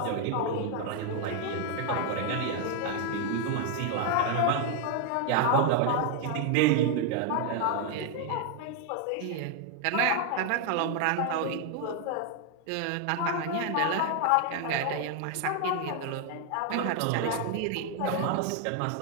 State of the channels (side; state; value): both; different; correlation 0.01